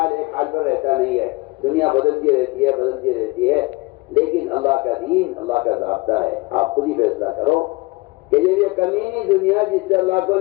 ایک حال پر رہتا نہیں ہے. دنیا بدلتی رہتی ہے لیکن اللہ کا دین اللہ کا ضابطہ ہے. آپ خود ہی فیصلہ کرو کہ یہ کمینی دنیا جس سے اللہ کو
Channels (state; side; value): quieter; right; 24.0 dB